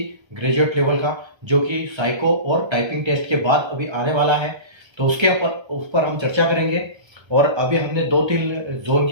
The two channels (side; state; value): left; late; 1.3 ms